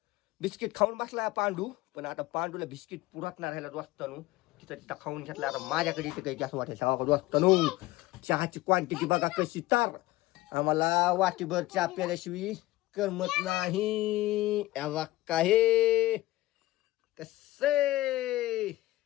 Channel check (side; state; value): right; quieter; 17.6 dB